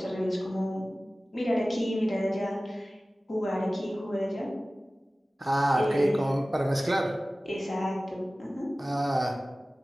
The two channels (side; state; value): both; normal; correlation 0.97